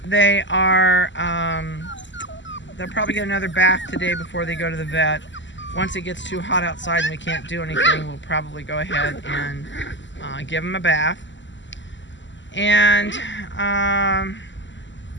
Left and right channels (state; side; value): late; right; 0.54 ms